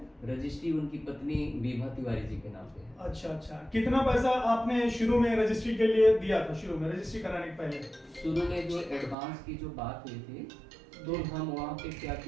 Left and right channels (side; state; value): left; drops out; at 9.2 s